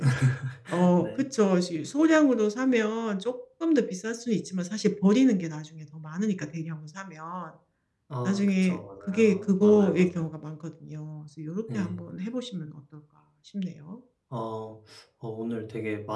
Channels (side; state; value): both; identical; correlation 1.00